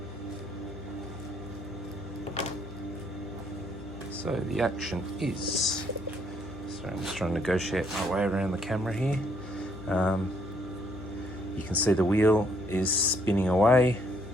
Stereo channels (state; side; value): noise; left; hum, 15 dB below the sound